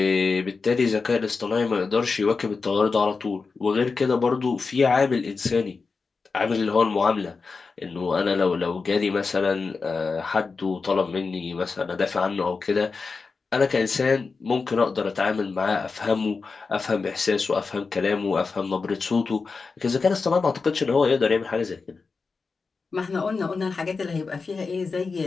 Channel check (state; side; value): quieter; right; 4.5 dB